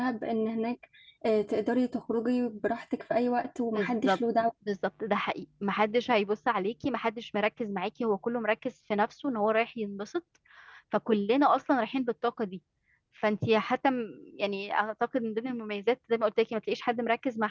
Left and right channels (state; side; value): identical; both; correlation 1.00